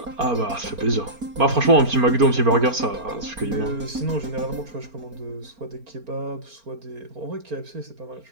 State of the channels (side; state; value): left; late; 4.4 ms